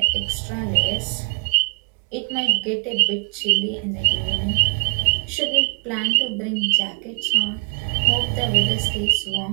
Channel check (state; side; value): quieter; left; 36.1 dB